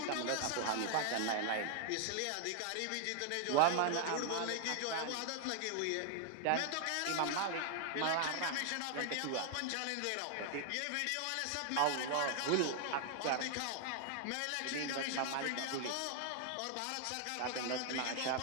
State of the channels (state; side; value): different; both; correlation 0.00